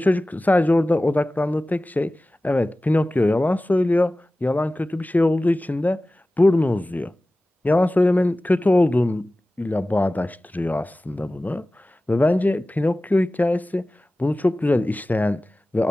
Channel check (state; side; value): normal; both; correlation 0.97